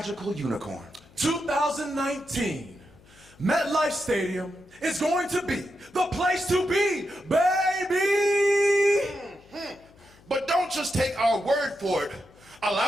unicorn, 2019, MetLife Stadium is going to be the place to be, baby! But don't just take our word for it.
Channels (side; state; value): left; noise; hum, 27 dB below the sound